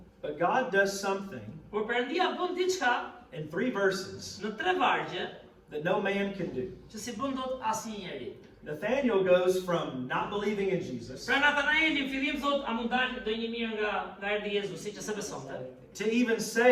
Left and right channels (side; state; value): both; identical; correlation 1.00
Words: But God does something Por Perëndia bën diçka in 3 verses në 3 vargje that no man can do. që si bën dot asnjë njeri. Nathanael goes from not believing in Jesus Pra Natanaeli në fillim thot, a mund dalë do një mirë nga erdhi Jezusi që se besonte. to even